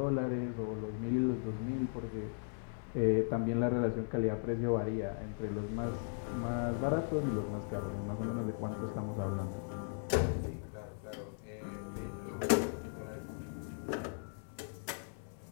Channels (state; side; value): silent; right; 53 dB below the other